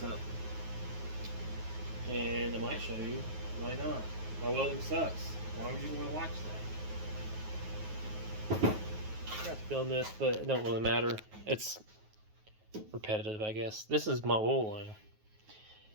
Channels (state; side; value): late; left; 9.4 ms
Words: up, and I might show you. Why not? My welding sucks. Why would you want to watch that? I forgot to film this, but it don't really matter. It's repetitive, I guess. This is my oil line.